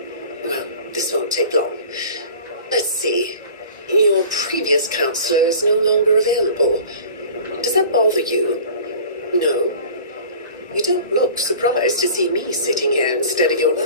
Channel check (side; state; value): both; inverted; correlation -0.42